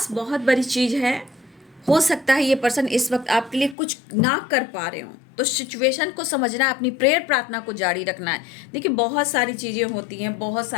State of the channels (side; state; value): right; drops out; at 3.8 s